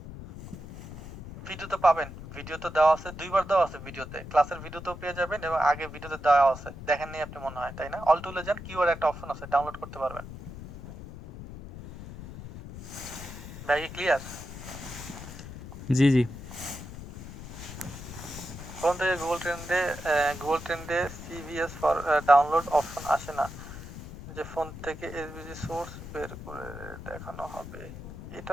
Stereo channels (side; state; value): left; noise; rumble, 12 dB below the sound